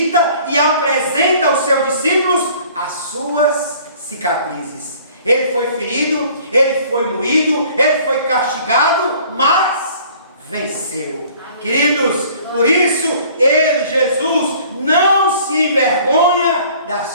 e apresenta aos seus discípulos as suas cicatrizes. Ele foi ferido, ele foi moído, ele foi castigado, mas venceu. Queridos, por isso ele, Jesus, não se envergonha das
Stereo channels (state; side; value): inverted; both; correlation -0.53